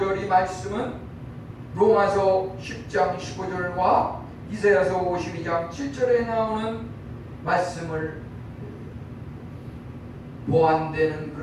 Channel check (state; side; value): identical; both; correlation 1.00